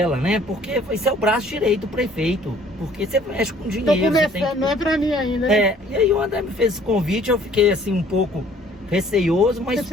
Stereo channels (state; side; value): normal; both; correlation 0.57